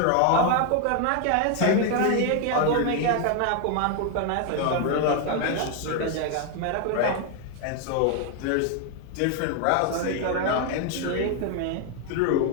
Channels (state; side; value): different; both; correlation 0.01